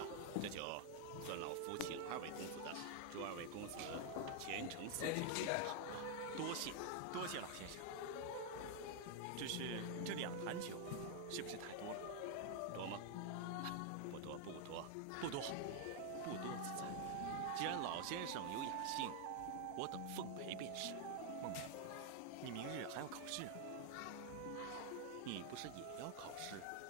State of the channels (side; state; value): both; different; correlation 0.00